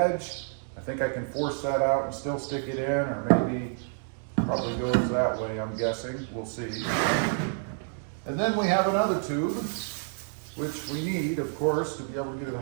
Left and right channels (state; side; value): silent; left; 58 dB below the other